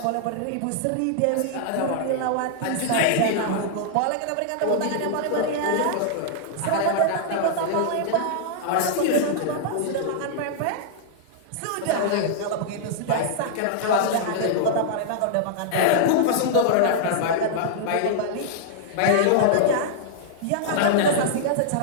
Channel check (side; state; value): both; different; correlation -0.01